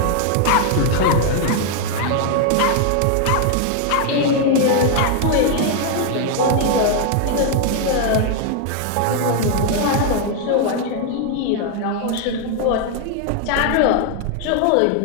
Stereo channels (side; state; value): both; different; correlation 0.00